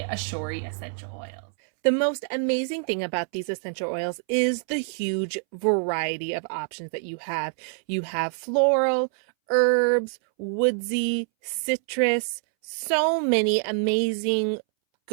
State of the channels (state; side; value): silent; left; 61 dB below the other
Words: Aeshory essential oils. The most amazing thing about these essential oils is the huge variety of options that you have. You have floral, herbs, woodsy, citrus, so many amazing